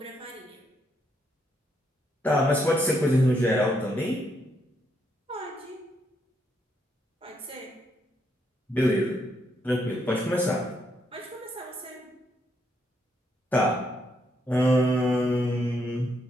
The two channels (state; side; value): normal; both; correlation 0.76